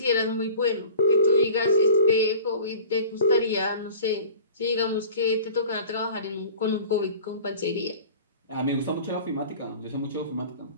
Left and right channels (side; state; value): both; inverted; correlation -0.43